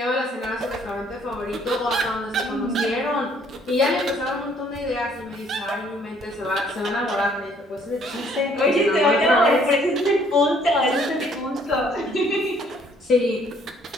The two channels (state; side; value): normal; both; correlation 0.62